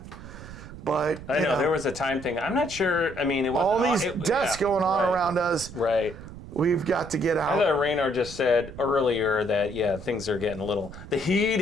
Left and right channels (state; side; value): noise; right; rumble, 14 dB below the sound